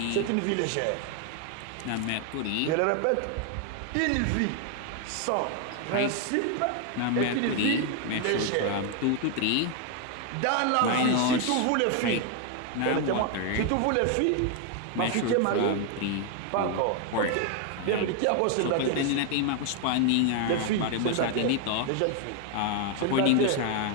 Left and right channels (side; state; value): both; different; correlation 0.00